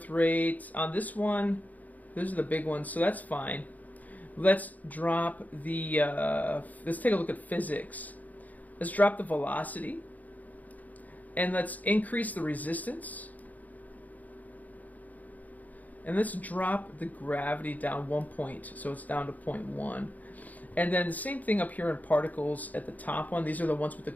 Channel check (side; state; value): right; late; 0.079 ms